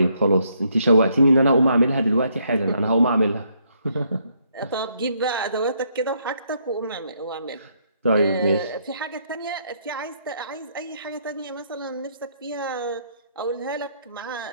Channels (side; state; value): both; inverted; correlation -0.72